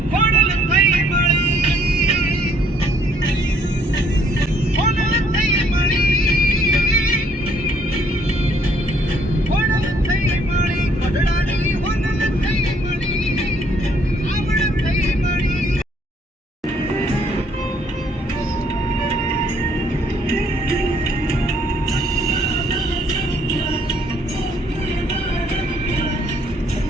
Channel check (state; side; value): normal; both; correlation 0.65